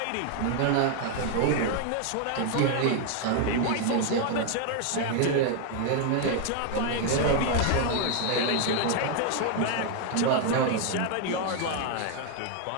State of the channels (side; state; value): both; different; correlation 0.01